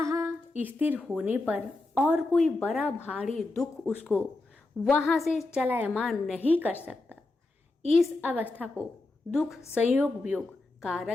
स्थिर होने पर और कोई बड़ा भारी दुख उसको वहां से चलायमान नहीं कर सकता। इस अवस्था को दुख संयोग वियोग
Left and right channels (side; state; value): right; quieter; 3.1 dB